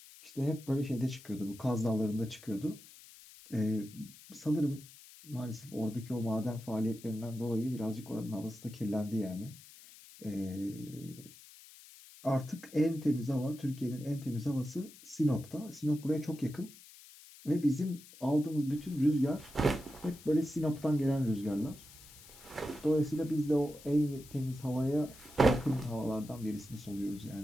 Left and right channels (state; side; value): noise; left; hiss, 20 dB below the sound